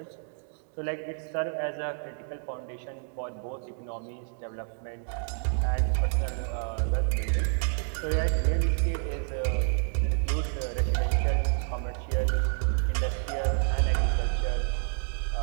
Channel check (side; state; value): left; silent; 56 dB below the other